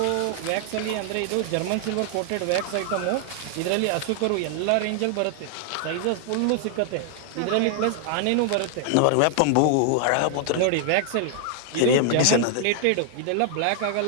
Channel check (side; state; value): both; different; correlation 0.00